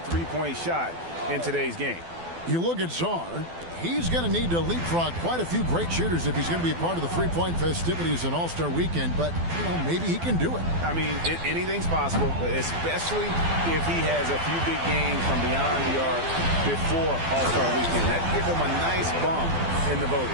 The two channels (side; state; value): left; late; 12 ms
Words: three-point shot in today's game. You look at Czar. He's going to need to leapfrog quite a few great shooters if he's going to be a part of the three-point festivities and All-Star Weekend, but, you know, maybe he can do it. I mean, anything's possible, especially if he has a few big games from beyond the arc before All-Star Weekend. That gives him a nice bump in the